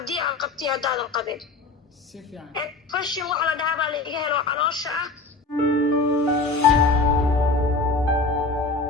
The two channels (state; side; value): quieter; right; 3.6 dB